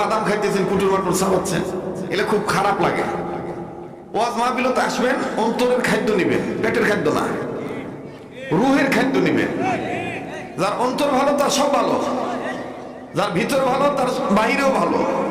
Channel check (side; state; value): both; identical; correlation 1.00